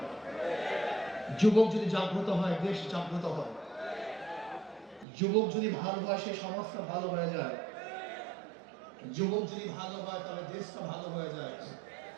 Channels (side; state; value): left; drops out; at 5.1 s